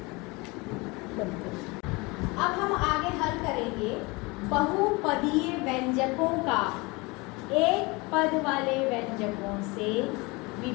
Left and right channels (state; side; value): quieter; right; 25.5 dB